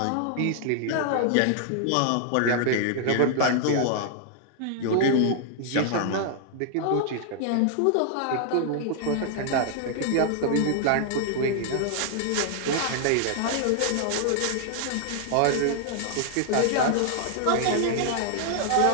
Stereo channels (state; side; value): different; both; correlation -0.01